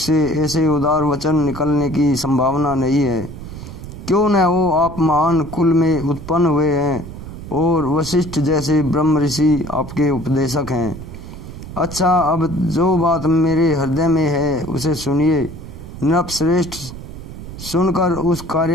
ऐसे उदार वचन निकलने की संभावना नहीं है। क्यों न हो, आप महान कुल में उत्पन्न हुए हैं और वशिष्ठ जैसे ब्रह्म ऋषि आपके उपदेशक हैं। अच्छा, अब जो बात मेरे हृदय में है उसे सुनिए। नृपश्रेष्ठ, सुनकर उस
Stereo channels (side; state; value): right; noise; rumble, 12 dB below the sound